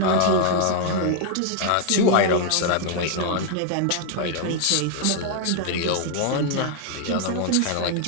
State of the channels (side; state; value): both; different; correlation 0.00